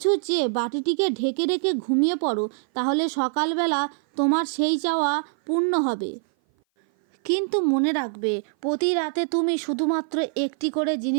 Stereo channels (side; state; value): left; silent; 57 dB below the other